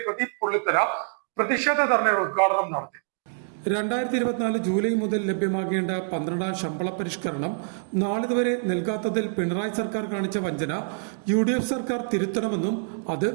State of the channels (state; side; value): silent; left; digital silence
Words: പ്രദീപ് പുള്ളിത്തല പ്രതിഷേധ ധർണയുടെ ഉദ്ഘാടനം നടത്തി. 2024 ജൂലൈ മുതൽ ലഭ്യമാകേണ്ട 12ാം ശമ്പള പരിഷ്കരണം നാളിതുവരെ നൽകാത്തതിൽ പിണറായി സർക്കാർ കാണിച്ച വഞ്ചന UDF സർക്കാർ തിരുത്തണമെന്നും അത്